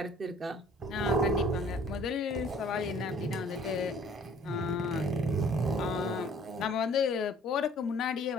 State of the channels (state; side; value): normal; both; correlation 0.55